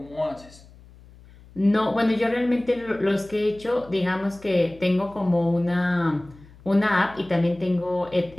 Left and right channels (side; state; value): left; noise; hum, 23 dB below the sound